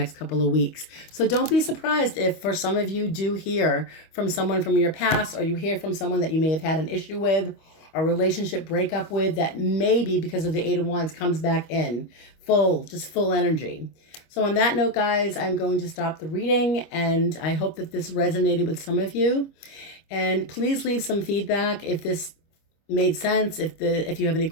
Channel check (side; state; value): right; late; 25 ms